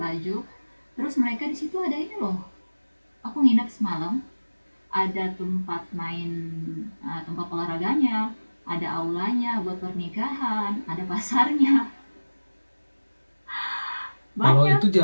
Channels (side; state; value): both; inverted; correlation -1.00